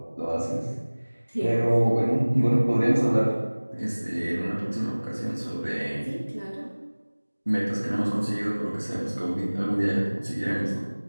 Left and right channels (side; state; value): both; inverted; correlation -1.00